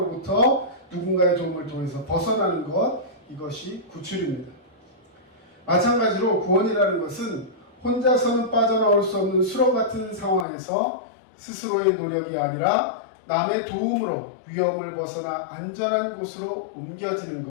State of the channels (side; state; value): right; drops out; at 10.5 s